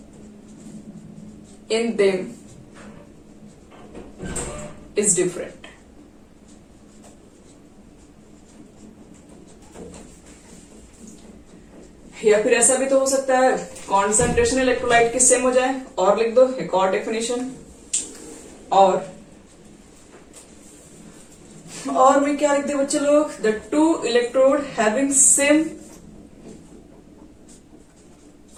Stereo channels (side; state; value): both; identical; correlation 1.00